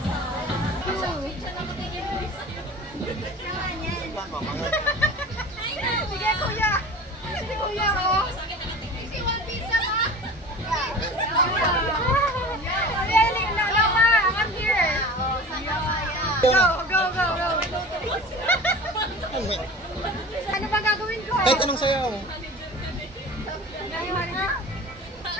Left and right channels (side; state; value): both; normal; correlation 0.38